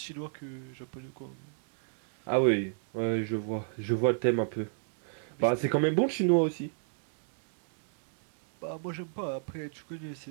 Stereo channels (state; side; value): silent; left; digital silence